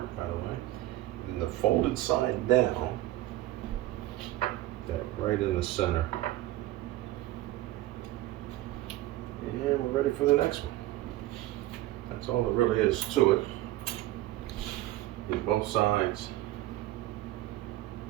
by the way. And the folded side down, that right in the center. And we're ready for the next one. That's all there really is to it. Get both sides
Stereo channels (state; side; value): quieter; left; 15.8 dB